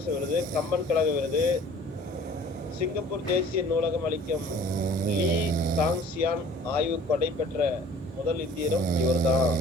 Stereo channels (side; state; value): both; normal; correlation 0.50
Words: விருது, கம்பன் கழக விருது, சிங்கப்பூர் தேசிய நூலகம் அளிக்கும் லீ தாங்சியான் ஆய்வு கொடை பெற்ற முதல் இந்தியரும் இவர் தான்